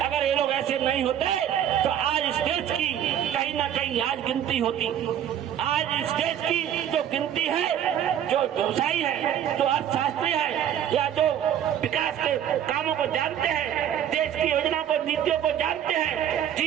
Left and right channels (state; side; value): quieter; left; 10.0 dB